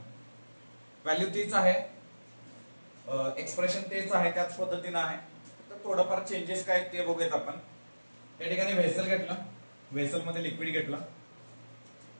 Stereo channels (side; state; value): both; inverted; correlation -1.00